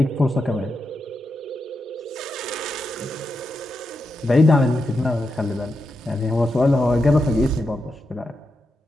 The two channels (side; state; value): both; normal; correlation 0.86